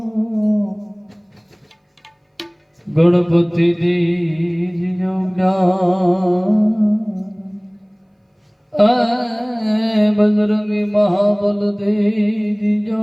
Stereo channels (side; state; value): both; identical; correlation 1.00